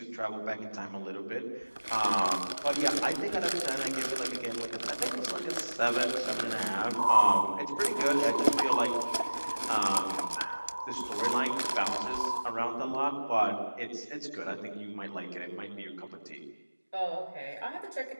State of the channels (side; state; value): both; inverted; correlation -1.00